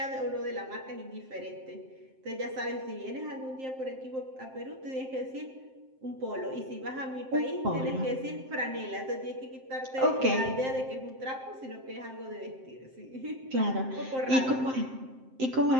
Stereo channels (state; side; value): late; left; 7.6 ms